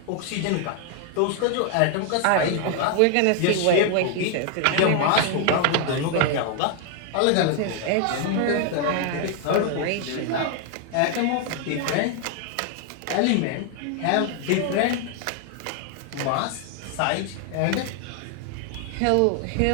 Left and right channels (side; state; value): both; different; correlation 0.00